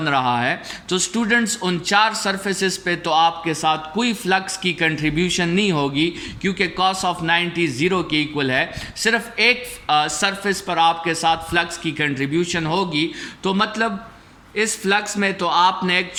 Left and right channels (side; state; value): both; identical; correlation 1.00